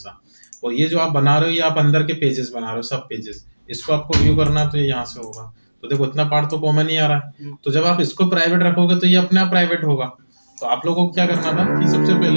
और ये जो आप बना रहे हो, ये आप अंदर के पेजेस बना रहे हो, सब पेजेस, इसको आपको व्यू करना है तो ये यहाँ से होगा। तो देखो इतना पार्ट तो कॉमन ही आ रहा है। तो जब आप इसको प्राइवेट रखोगे तो ये अपने आप प्राइवेट होगा। तो आप लोगों को क्या करना था कि सबसे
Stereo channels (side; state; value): both; inverted; correlation -1.00